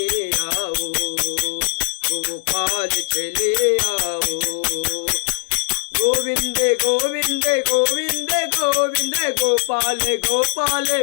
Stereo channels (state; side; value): silent; right; digital silence